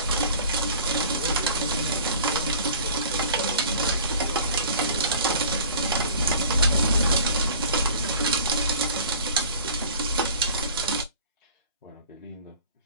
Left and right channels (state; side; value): inverted; both; correlation -0.45